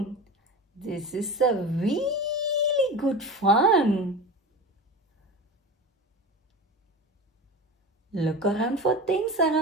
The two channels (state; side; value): normal; both; correlation 0.30